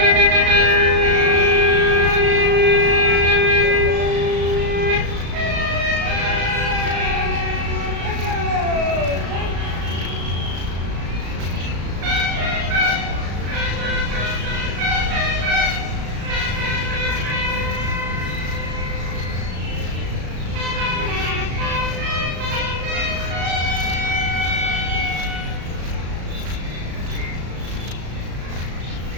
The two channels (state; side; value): late; left; 35 ms